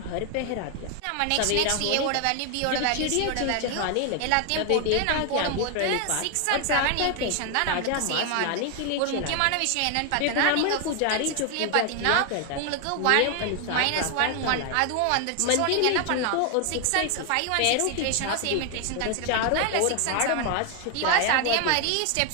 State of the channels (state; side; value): different; both; correlation 0.01